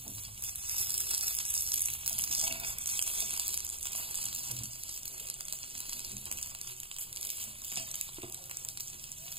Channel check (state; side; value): late; left; 0.27 ms